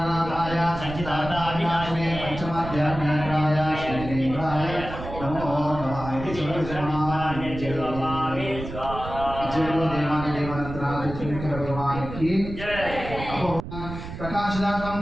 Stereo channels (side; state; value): right; noise; rumble, 10 dB below the sound